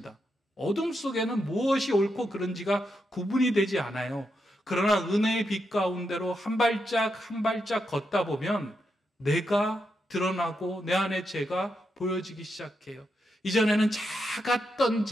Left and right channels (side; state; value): both; normal; correlation 0.84